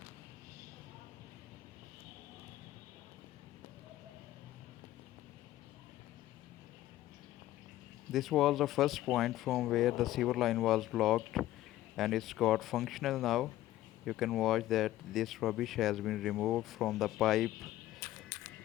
This was the first point from where the sewer line was blocked and it's got functional now. You can watch that this rubbish has been removed from the pipe.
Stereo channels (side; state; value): right; quieter; 14.8 dB